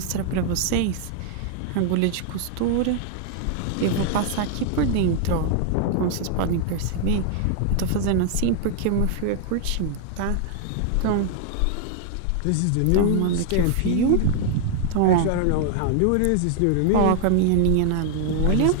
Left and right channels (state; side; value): different; both; correlation 0.00